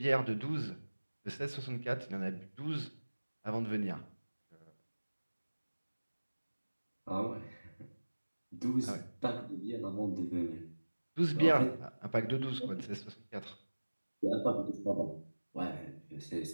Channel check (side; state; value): both; inverted; correlation -1.00